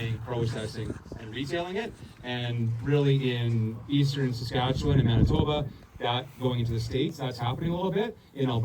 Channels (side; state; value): both; identical; correlation 1.00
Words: processing, and retailing it. And really in eastern Saskatchewan and Manitoba, that going into the States, that's happening a little bit. In